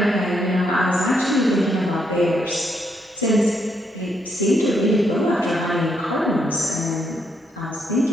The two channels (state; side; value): normal; both; correlation 0.76